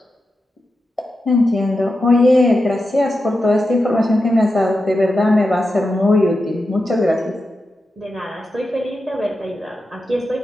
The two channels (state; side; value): normal; both; correlation 0.90